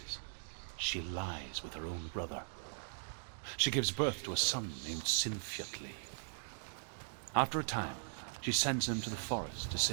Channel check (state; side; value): silent; left; digital silence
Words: she lies with her own brother. She gives birth to a son named Sinfjotli. After a time, she sends him to the forest to